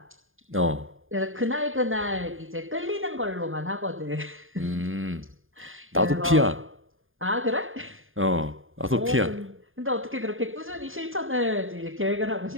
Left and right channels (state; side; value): late; left; 0.59 ms